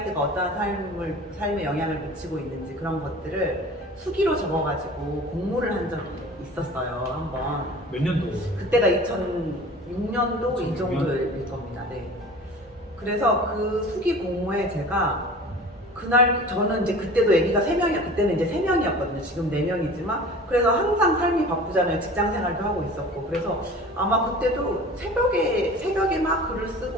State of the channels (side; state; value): both; normal; correlation 0.41